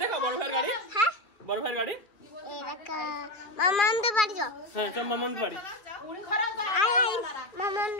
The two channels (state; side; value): late; right; 2.3 ms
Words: দেখো বড় ভাইয়ের গাড়ি হ্যাঁ বড় ভাইয়ের গাড়ি এরকা মামান্দ বাড়ি যাও হ্যাঁ চল মামার বাড়ি আই মামান্দ